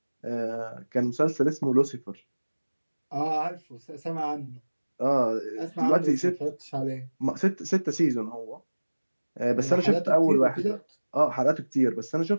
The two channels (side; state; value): both; inverted; correlation -1.00